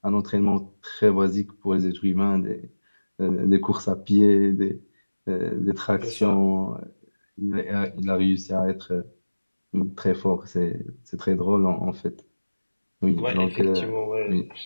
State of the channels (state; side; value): inverted; both; correlation -1.00